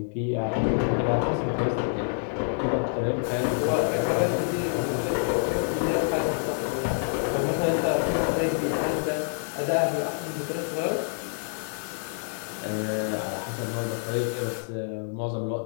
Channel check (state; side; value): silent; right; digital silence